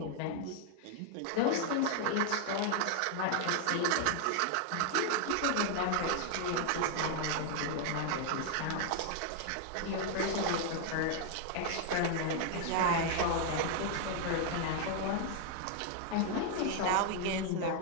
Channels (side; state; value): both; different; correlation 0.00